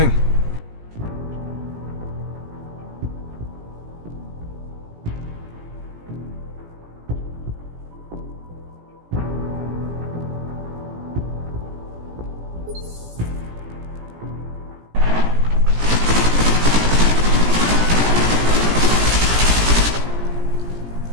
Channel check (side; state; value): left; late; 17 ms